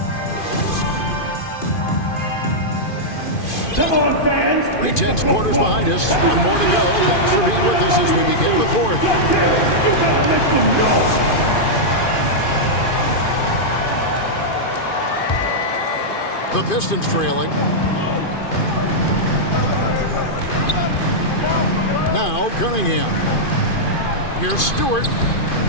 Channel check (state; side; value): late; right; 2.5 ms